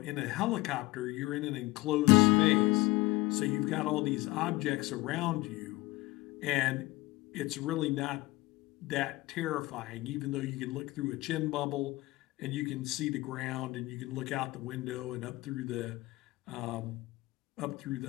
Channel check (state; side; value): quieter; right; 20.3 dB